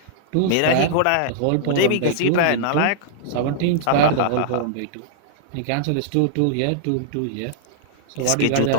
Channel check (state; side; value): different; both; correlation -0.01